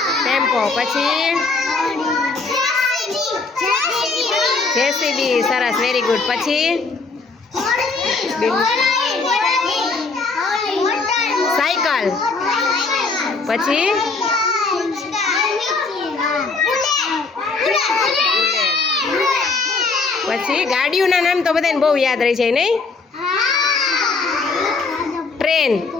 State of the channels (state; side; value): quieter; right; 4.1 dB